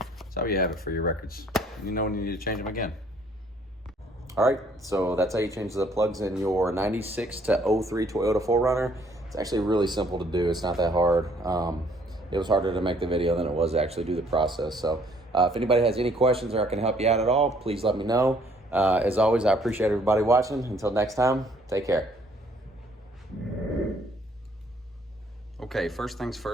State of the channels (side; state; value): both; normal; correlation 0.62